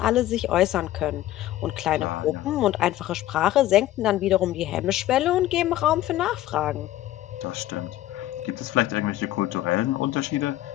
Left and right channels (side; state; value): right; quieter; 14.5 dB